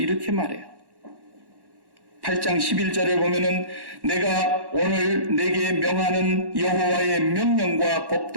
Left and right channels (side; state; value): left; late; 1.1 ms